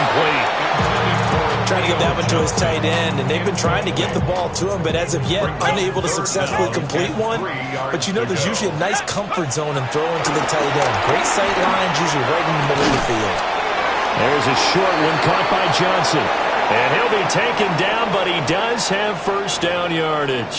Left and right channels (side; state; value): both; identical; correlation 1.00